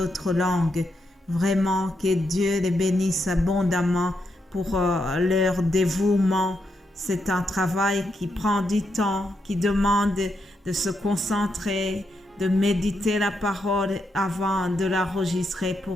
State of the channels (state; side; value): normal; both; correlation 0.82